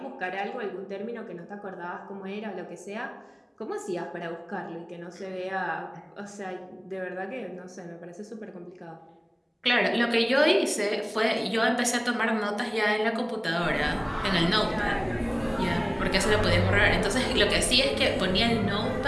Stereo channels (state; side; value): identical; both; correlation 1.00